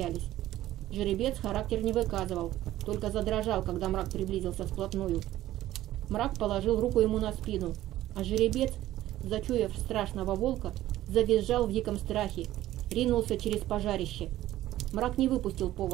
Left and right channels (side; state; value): left; quieter; 14.4 dB